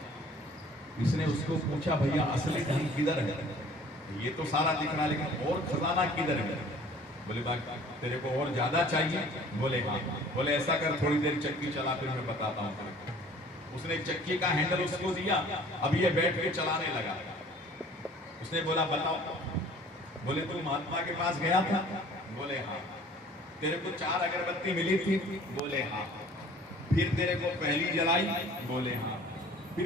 इसने उसको पूछा भैया असली धन किधर है। ये तो सारा दिख रहा, लेकिन और खजाना किधर है? बोले बाबा तेरे को और ज्यादा चाहिए? बोले हाँ। बोले ऐसा कर, थोड़ी देर चक्की चला, फिर मैं बताता हूँ। उसने चक्की का हैंडल उसको दिया, अब ये बैठ के चलाने लगा। उसने बोला बताओ। बोले तू महात्मा के पास गया था? बोले हाँ। तेरे को 4 अगरबत्ती मिली थी? बोले हाँ। फिर तेरे को पहली जलाई? बोले हाँ।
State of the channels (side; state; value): both; normal; correlation 0.50